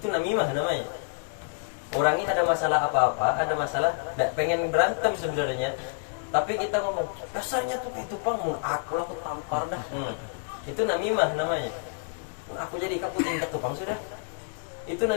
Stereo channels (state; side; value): silent; right; digital silence